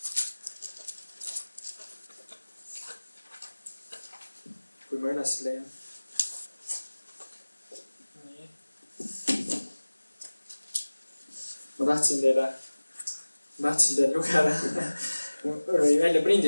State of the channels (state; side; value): inverted; both; correlation -1.00